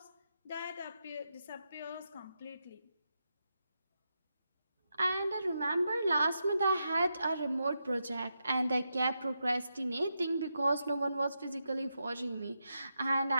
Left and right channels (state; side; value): inverted; both; correlation -0.86